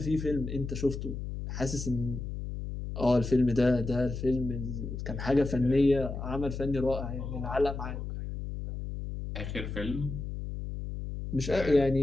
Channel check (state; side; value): noise; left; hum, 6 dB below the sound